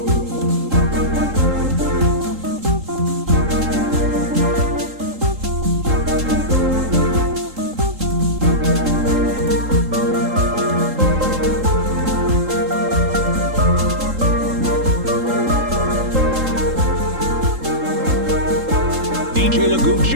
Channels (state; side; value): late; left; 3.8 ms